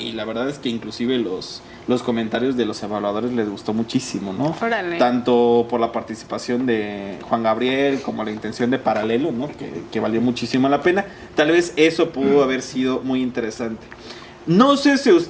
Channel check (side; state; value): both; identical; correlation 1.00